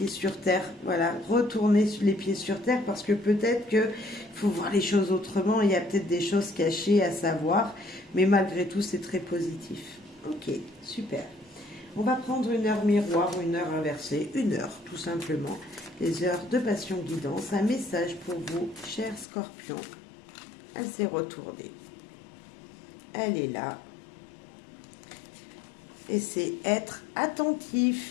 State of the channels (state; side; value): drops out; right; at 19.2 s